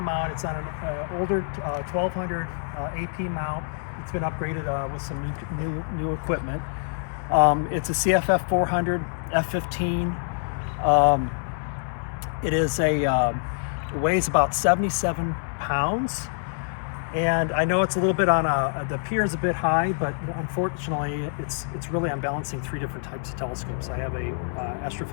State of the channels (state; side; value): silent; right; digital silence